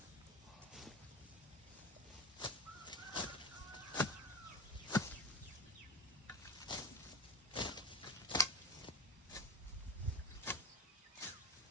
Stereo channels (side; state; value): both; normal; correlation 0.22